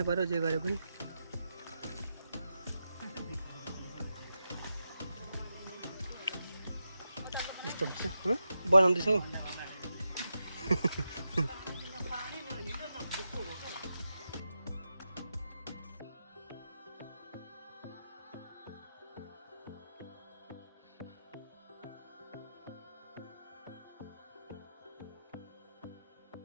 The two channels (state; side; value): inverted; both; correlation -0.88